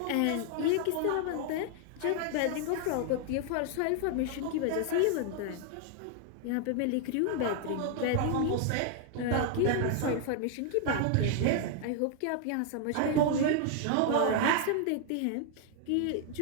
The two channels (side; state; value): both; different; correlation 0.00